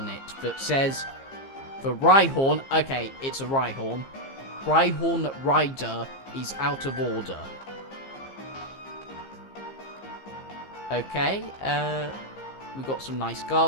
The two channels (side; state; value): right; late; 15 ms